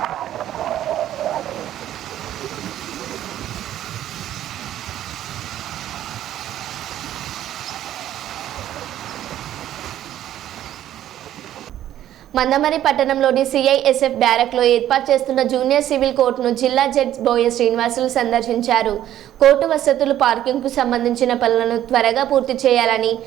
మందమరి పట్టణంలోని సిఐఎస్ఎఫ్ బ్యారక్లో ఏర్పాటు చేస్తున్న జూనియర్ సివిల్ కోర్టును జిల్లా జడ్జి బోయ శ్రీనివాసులు సందర్శించారు. కోర్టు వసతులు, పార్కింగ్కు సంబంధించిన పనులను త్వరగా పూర్తి చేయాలని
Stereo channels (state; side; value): quieter; left; 12.1 dB